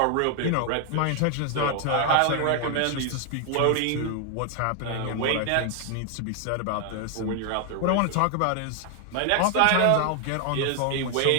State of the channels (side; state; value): both; different; correlation 0.00